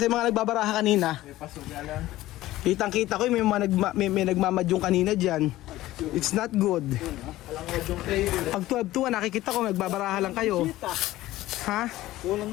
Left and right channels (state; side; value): quieter; right; 16.1 dB